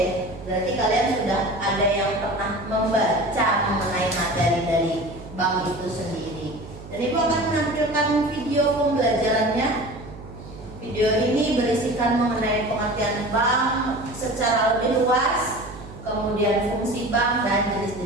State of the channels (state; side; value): noise; right; hum, 15 dB below the sound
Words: berarti kalian sudah ada yang pernah membaca mengenai materi dari bank itu sendiri. Dan Ibu akan menampilkan video pembelajarannya. Video ini berisikan mengenai pengertian bank secara lebih luas, kemudian fungsi bank dan